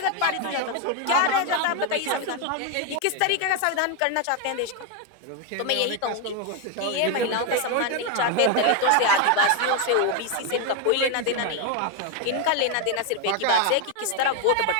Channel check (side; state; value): both; different; correlation 0.01